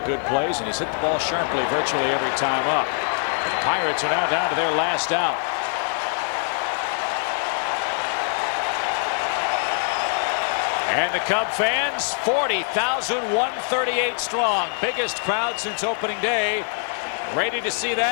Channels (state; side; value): silent; right; 60 dB below the other